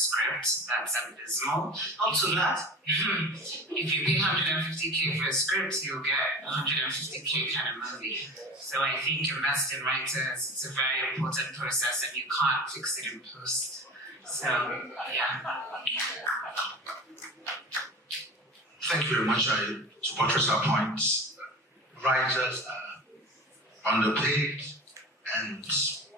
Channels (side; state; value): both; normal; correlation 0.35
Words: That's abysmal. Up to that? If you pay 150K for a script, you'll get 150K kind of movie. So I think invest in writers. It's a very important process and you can't fix it in post. So, yeah. Thank you very much. To buttress our points, writers are underpaid and